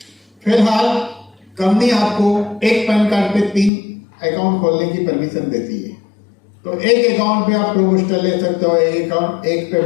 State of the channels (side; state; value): right; drops out; at 3.7 s